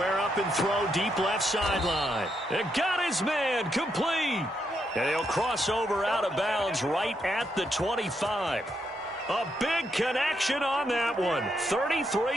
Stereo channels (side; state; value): both; normal; correlation 0.79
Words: up and throw deep left sideline. And got his man complete. And he'll cross over out of bounds right at the 25. A big connection on that one.